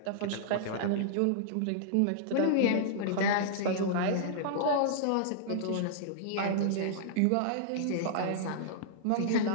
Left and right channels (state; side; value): different; both; correlation -0.02